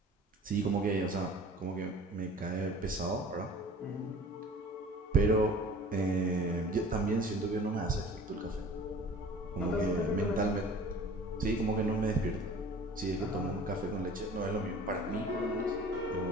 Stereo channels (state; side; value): normal; both; correlation 0.45